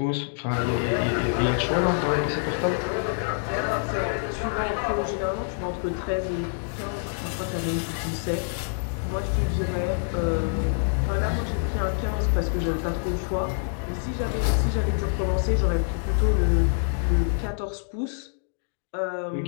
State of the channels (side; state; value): right; silent; digital silence